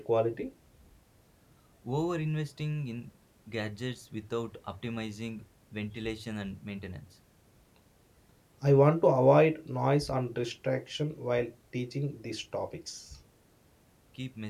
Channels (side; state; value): both; identical; correlation 1.00